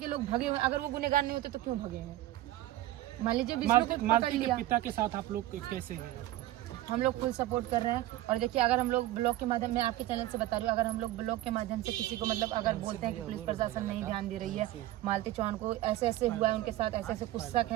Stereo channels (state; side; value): quieter; left; 15.4 dB